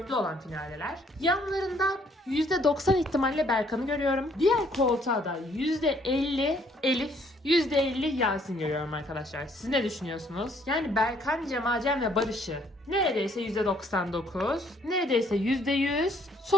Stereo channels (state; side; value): normal; both; correlation 0.65